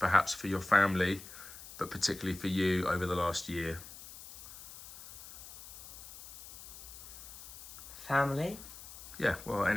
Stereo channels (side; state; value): left; noise; hiss, 15 dB below the sound